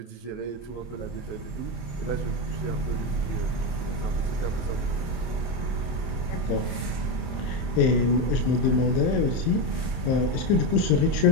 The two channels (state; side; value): late; right; 26 ms